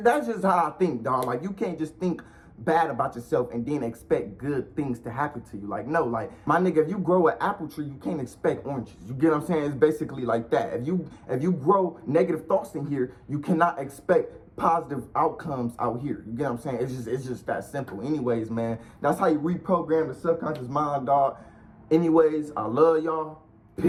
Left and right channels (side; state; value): both; identical; correlation 1.00